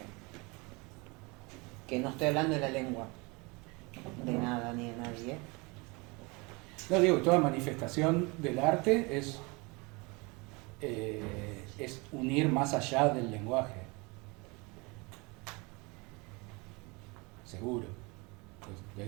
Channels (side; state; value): left; quieter; 27.4 dB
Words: Que no estoy hablando de la lengua, de nada ni de nadie, No digo, toda manifestación del arte es unir más allá del lenguaje. Seguro. Pues de